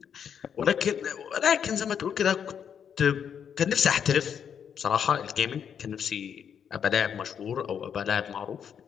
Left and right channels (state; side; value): quieter; right; 7.9 dB